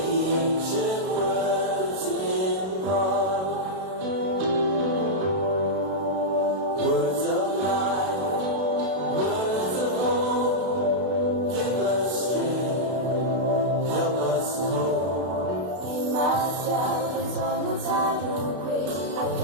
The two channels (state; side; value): late; left; 32 ms